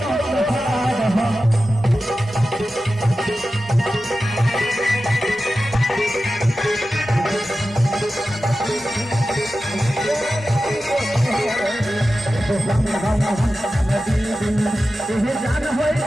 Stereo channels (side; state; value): both; normal; correlation 0.93